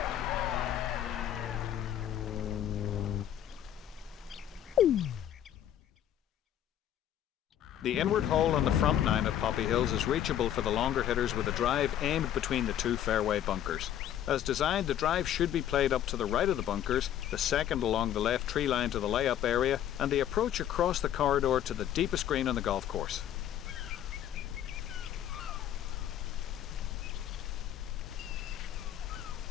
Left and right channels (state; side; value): quieter; right; 10.9 dB